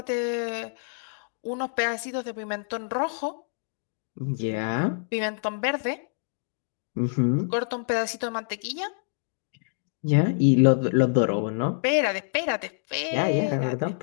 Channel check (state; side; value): silent; right; digital silence